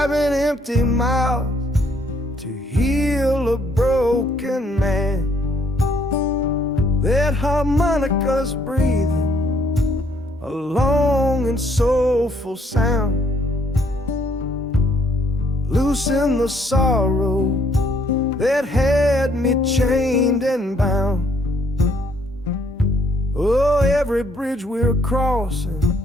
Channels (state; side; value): normal; both; correlation 0.67